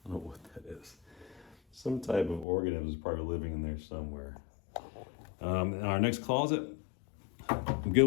I don't know what that is. Some type of organism is probably living in there somewhere. Our next closet, I'm good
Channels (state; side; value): drops out; right; at 2.5 s